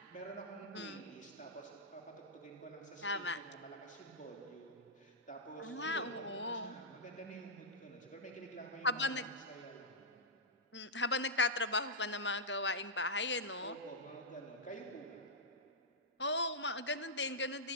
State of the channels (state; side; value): normal; both; correlation -0.09